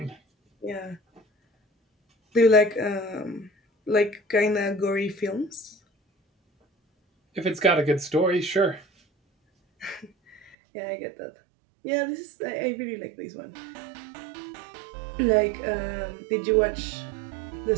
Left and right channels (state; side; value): drops out; left; at 10.6 s